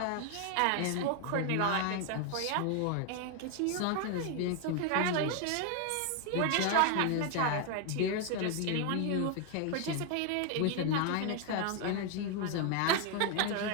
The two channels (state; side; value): different; both; correlation 0.00